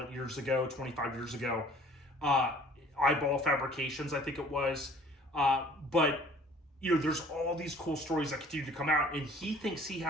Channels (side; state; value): both; normal; correlation 0.52